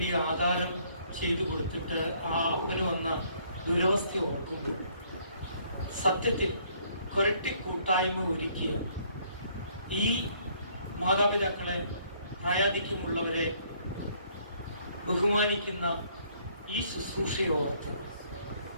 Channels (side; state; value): both; inverted; correlation -0.64